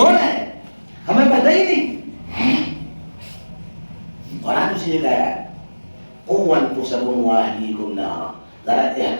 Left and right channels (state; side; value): inverted; both; correlation -1.00